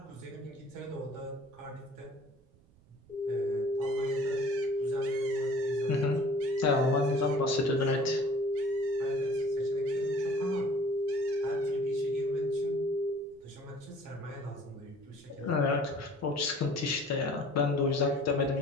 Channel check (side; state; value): right; noise; rumble, 29 dB below the sound